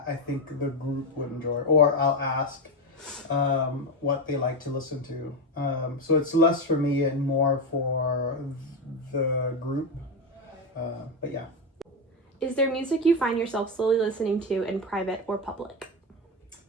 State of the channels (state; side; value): normal; both; correlation 0.12